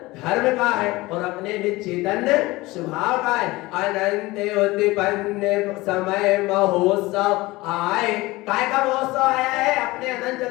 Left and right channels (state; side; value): quieter; right; 20.5 dB